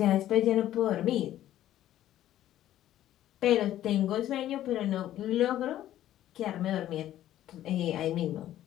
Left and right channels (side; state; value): right; quieter; 12.8 dB